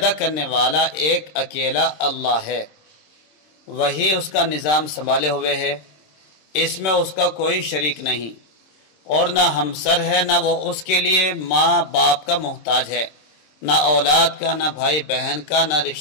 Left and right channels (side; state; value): right; late; 26 ms